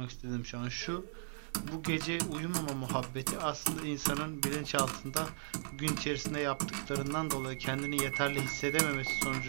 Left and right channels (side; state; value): left; silent; 53 dB below the other